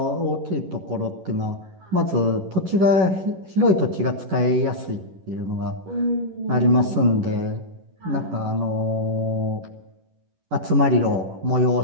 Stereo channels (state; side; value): late; left; 11 ms